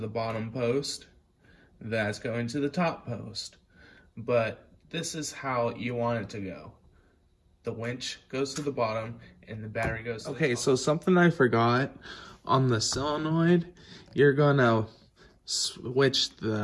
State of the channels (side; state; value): both; identical; correlation 1.00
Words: bottom post. That's going to the top post. But this is how you want it to go. The winch goes to the bottom and the battery goes to the top. Okay, so something I forgot. On the solenoid, you're gonna switch